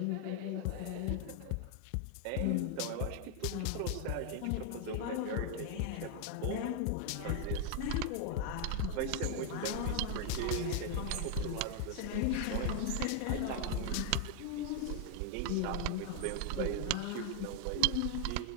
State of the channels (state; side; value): different; both; correlation 0.00